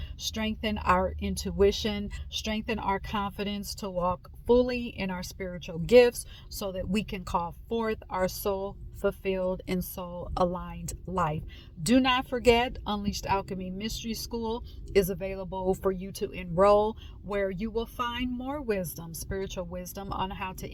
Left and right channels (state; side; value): identical; both; correlation 1.00